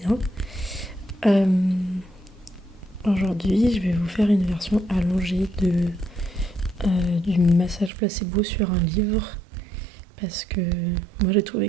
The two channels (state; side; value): drops out; left; at 7.9 s